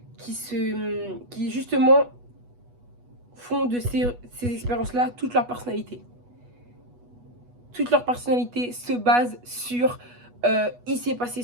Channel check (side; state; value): left; late; 8.2 ms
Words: qui justement font de ces expériences-là toute leur personnalité. Toute leur personnalité se base sur il s'est passé